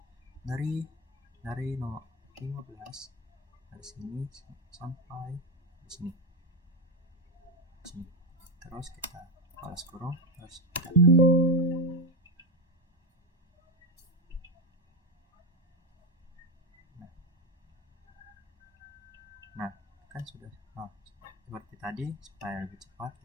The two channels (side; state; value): both; normal; correlation 0.10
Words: dari 15 dari sini sampai di sini. Terus kita balas kurung, terus kita nah kan sudah seperti tadi. Supaya lebih cepat